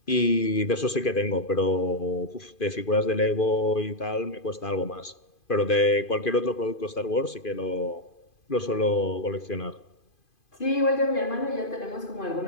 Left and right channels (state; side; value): late; right; 2.5 ms